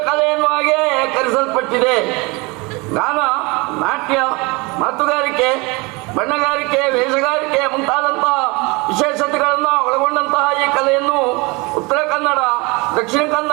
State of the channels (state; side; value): quieter; left; 26.3 dB